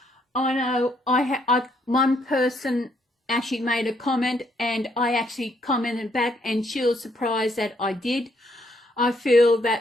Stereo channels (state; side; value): normal; both; correlation 0.71